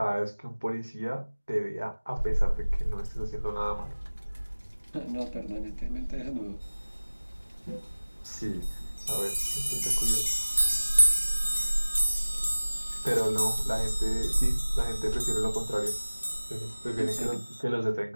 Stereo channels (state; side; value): inverted; both; correlation -1.00